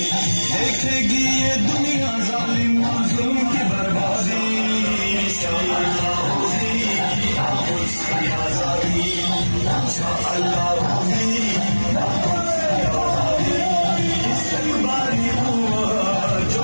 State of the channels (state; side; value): inverted; both; correlation -1.00